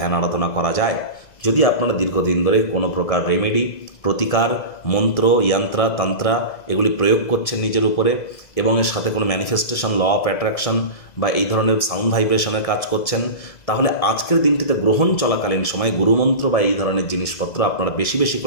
আরাধনা করা যায়। যদি আপনারা দীর্ঘদিন ধরে কোনো প্রকার রেমেডি, প্রতিকার, মন্ত্র, যন্ত্রা, তন্ত্রা এগুলি প্রয়োগ করছেন নিজের উপরে, এবং এর সাথে কোনো ম্যানিফেস্টেশন, ল অফ অ্যাট্রাকশন বা এই ধরনের সাউন্ড ভাইব্রেশনের কাজ করছেন, তাহলে আজকের দিনটিতে গ্রহণ চলাকালীন সময় গুরুমন্ত্র বা এই ধরনের জিনিসপত্র আপনারা বেশি বেশি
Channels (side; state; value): right; late; 1.7 ms